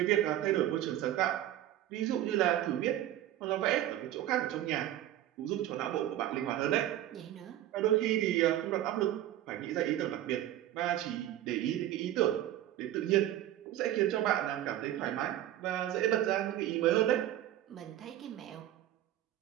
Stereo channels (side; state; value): left; quieter; 13.0 dB